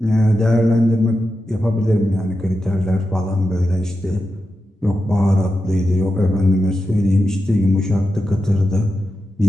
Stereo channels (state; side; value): normal; both; correlation 0.90